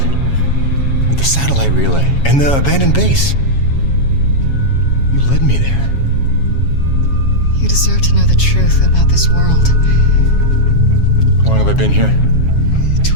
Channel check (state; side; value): late; right; 7.3 ms